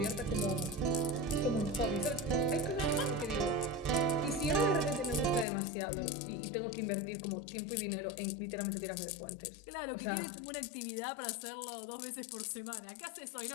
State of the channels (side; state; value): right; drops out; at 5.5 s